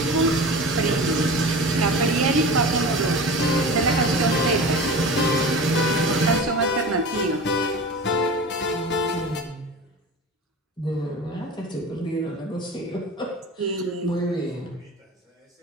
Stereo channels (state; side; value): normal; both; correlation 0.33